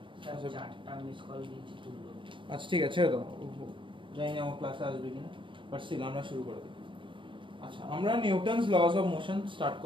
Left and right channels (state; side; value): late; left; 0.24 ms